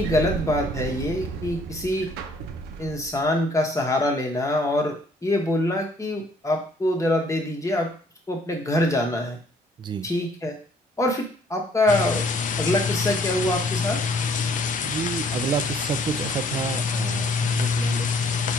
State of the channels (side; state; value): both; normal; correlation 0.61